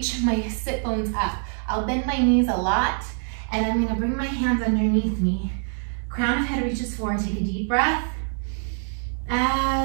my sit bones up. I'll bend my knees a lot, and I'm gonna bring my hands underneath me. Crown of head reaches forward, take a deep breath.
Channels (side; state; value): left; silent; 56 dB below the other